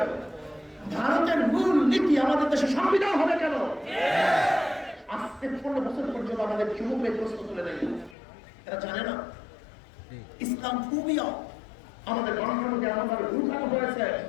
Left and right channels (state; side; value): drops out; right; at 8.2 s